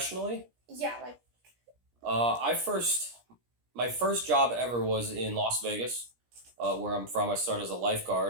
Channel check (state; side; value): late; left; 17 ms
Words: Yeah, like, my first job ever was in Las Vegas, where I'm from. I started as a